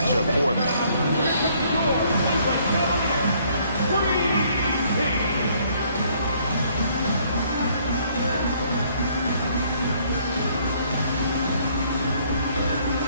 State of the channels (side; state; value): both; inverted; correlation -0.64